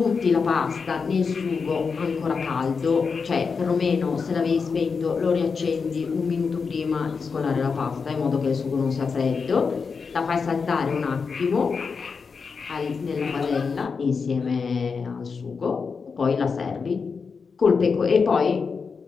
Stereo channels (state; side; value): quieter; right; 5.3 dB